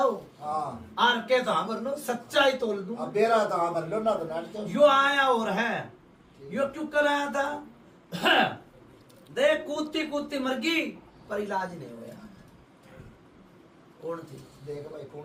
हाँ आर के तो हाँ लो, सच्चाई तोल दूं। अब बेरा तो हाँ भर लो ना, तो नाट तो यो आया और है, यो क्यों कर आया था? देख कूदती कूदती मर गई पर इलाज नहीं हुआ। कौन थी? देख भाई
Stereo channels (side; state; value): both; identical; correlation 1.00